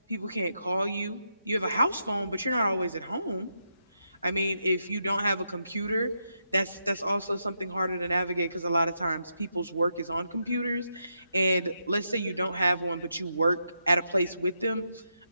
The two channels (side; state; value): both; inverted; correlation -0.83